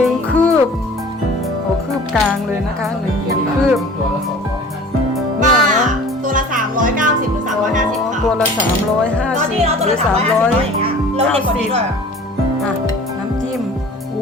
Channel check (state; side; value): normal; both; correlation 0.44